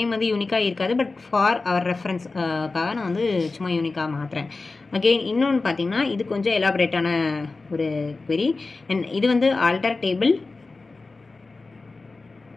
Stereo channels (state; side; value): quieter; right; 3.7 dB